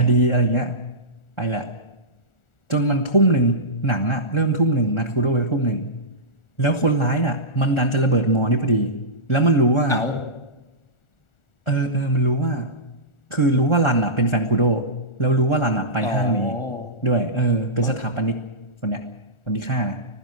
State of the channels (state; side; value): late; right; 1.4 ms